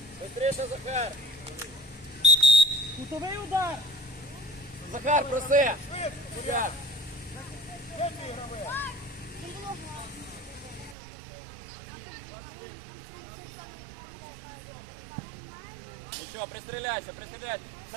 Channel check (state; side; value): drops out; left; at 11.0 s